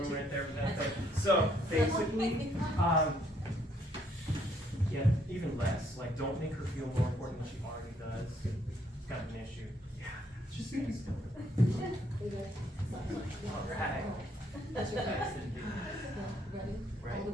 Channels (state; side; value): normal; both; correlation 0.69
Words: right there for that thing. So, basically, yeah, even less. Like, don't make her feel more important than she already does. It's kind of an issue. Yeah, just be still. Alright. That's your face. Ready? Right. All the